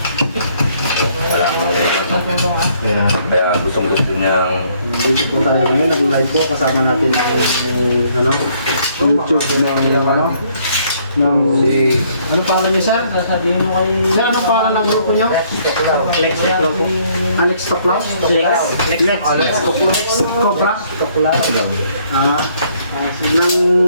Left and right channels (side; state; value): both; inverted; correlation -0.65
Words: Kaya gustong-gusto niyang... Dito po tayo ngayon, nag-live po. Kasama natin ang ano, YouTube ng ano. Ng Si... ano pangalan niya, sir? Sasabihin mo kay... Sir, anong pangalan ng grupo niyo? Lex Toclo. Alex Toclaw? Lex Toclo. Cobra? Ng